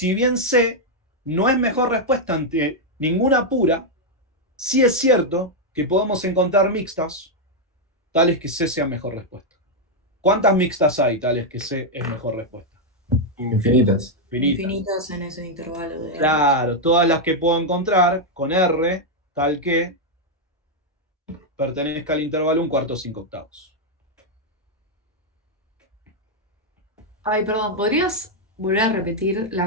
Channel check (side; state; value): both; normal; correlation -0.01